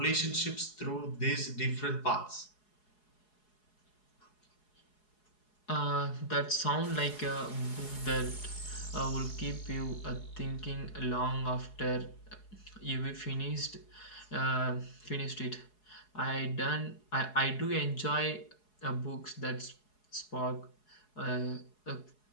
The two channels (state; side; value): late; right; 4.7 ms